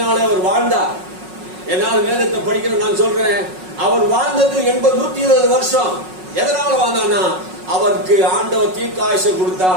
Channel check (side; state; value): left; late; 5.4 ms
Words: அவர் வாழ்ந்தார். என்னால் வேதத்தை படிக்கிற நான் சொல்றேன், அவர் வாழ்ந்தது 120 வருஷம். எதனால வாழ்ந்தான்னா, அவருக்கு ஆண்டவர் தீர்க்காயுசை